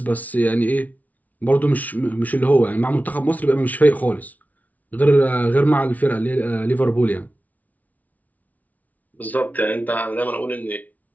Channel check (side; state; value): right; late; 0.074 ms